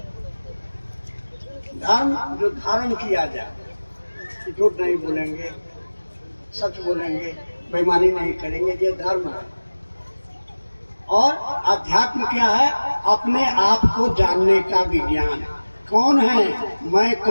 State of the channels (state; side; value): inverted; both; correlation -1.00